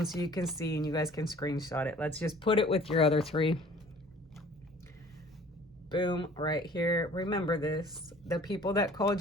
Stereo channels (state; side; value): normal; both; correlation 0.51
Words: so you can see and you guys can screenshot it. Let's just put it with your other 3. Boom, right here. Remember this. The people that called